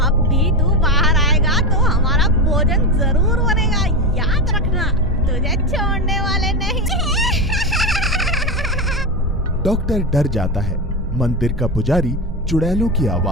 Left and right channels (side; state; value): both; normal; correlation 0.16